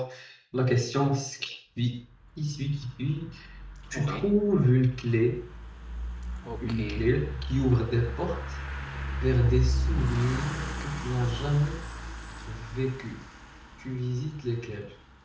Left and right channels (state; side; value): identical; both; correlation 1.00